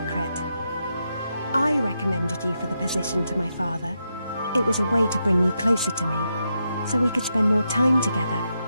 I recommended you for the position to my father. It was a way to bring you closer to me, so we could spend more time together.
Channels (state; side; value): inverted; both; correlation -0.84